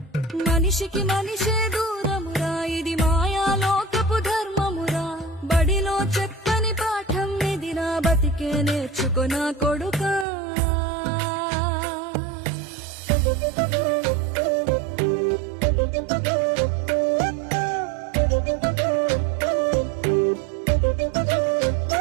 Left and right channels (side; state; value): left; drops out; at 10.2 s